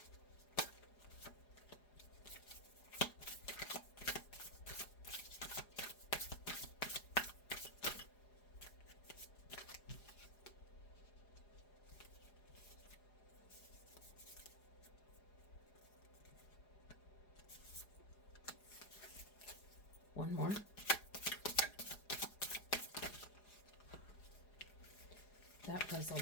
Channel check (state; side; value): late; right; 4.9 ms